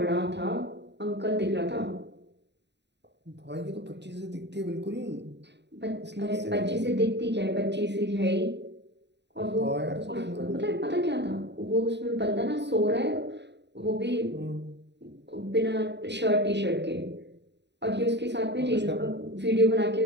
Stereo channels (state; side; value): late; left; 0.50 ms